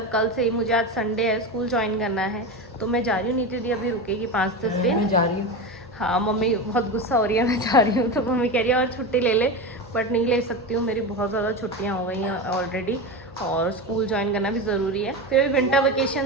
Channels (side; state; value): both; normal; correlation 0.21